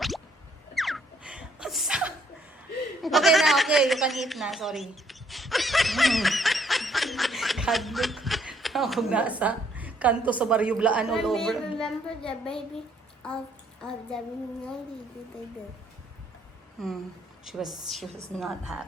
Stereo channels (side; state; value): both; normal; correlation 0.66